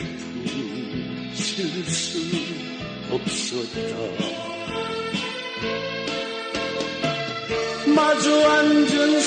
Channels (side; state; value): both; identical; correlation 1.00